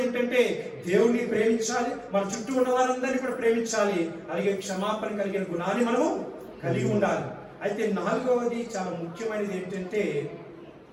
ఏంటంటే దేవుడిని ప్రేమించాలి, మన చుట్టూ ఉన్న వారందరినీ కూడా ప్రేమించాలి. అలాగే క్షమాపణ కలిగిన గుణాన్ని మనము కలిగి ఉండాలి. అయితే 4వది చాలా ముఖ్యమైనది ఏంటంటే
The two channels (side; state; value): both; identical; correlation 1.00